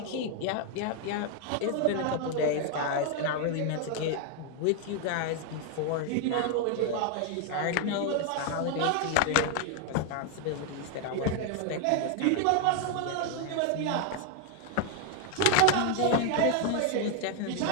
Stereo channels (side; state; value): both; different; correlation 0.00